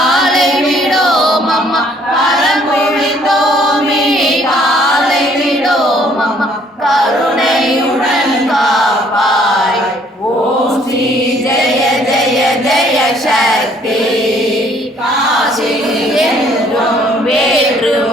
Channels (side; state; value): both; normal; correlation 0.62